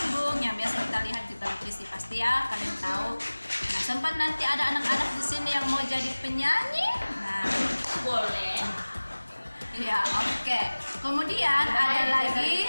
yang biasa kita lihat di televisi, pasti ya kalian tahu. Nah, sempat nanti ada anak-anak di sini yang mau jadi penyanyi. Nah, Boleh. iya, oke. Kemudian ada lagi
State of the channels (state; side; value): inverted; both; correlation -1.00